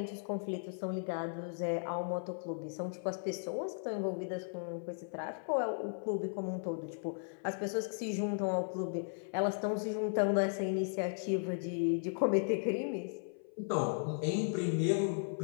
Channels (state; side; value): silent; right; 54 dB below the other